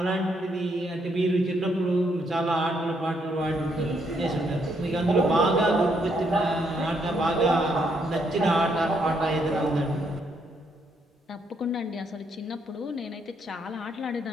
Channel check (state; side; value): normal; both; correlation 0.74